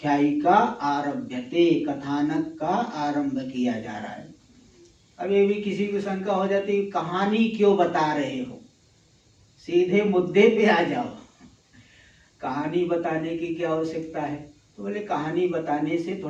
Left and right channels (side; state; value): both; identical; correlation 1.00